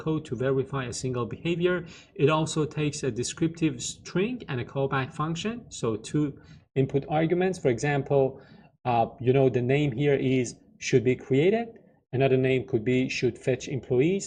to verify a single behavior. It also takes a descriptive string and a callback function. So two input arguments. For example, the name here is should be created. Another name could be should fetch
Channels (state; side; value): identical; both; correlation 1.00